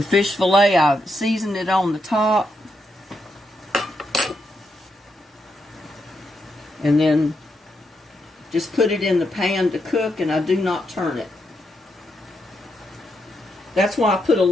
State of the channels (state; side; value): normal; both; correlation 0.81